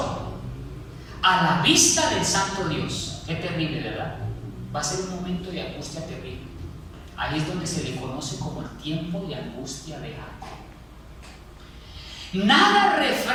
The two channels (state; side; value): identical; both; correlation 1.00